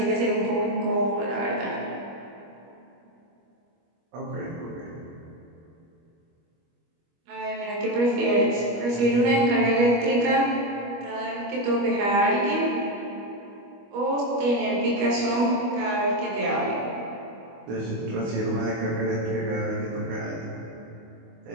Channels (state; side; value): late; left; 25 ms